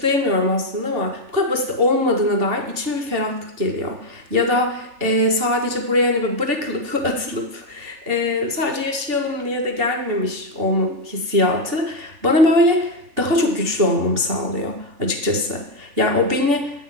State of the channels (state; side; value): late; left; 3.4 ms